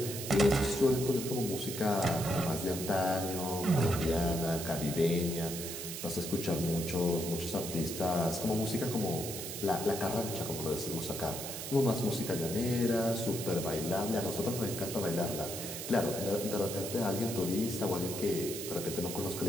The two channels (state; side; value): noise; right; hiss, 7 dB below the sound